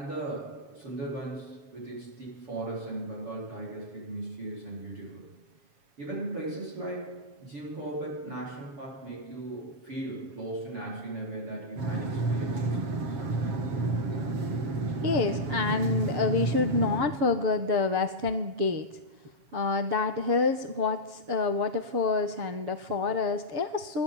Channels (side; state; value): left; late; 7.3 ms